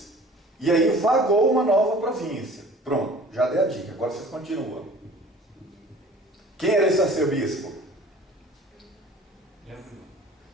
E aí vagou uma nova província. Pronto, já dei a dica, agora vocês continuam. Quem era esse arcebispo?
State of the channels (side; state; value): both; normal; correlation 0.47